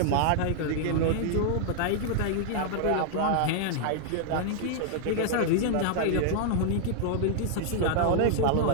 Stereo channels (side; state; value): both; different; correlation -0.01